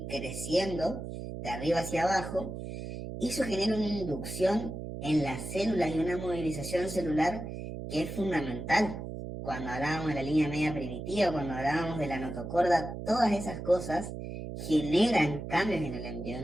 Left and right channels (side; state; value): right; noise; hum, 7 dB below the sound